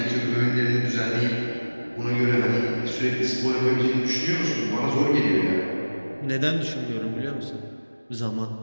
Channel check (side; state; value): both; inverted; correlation -1.00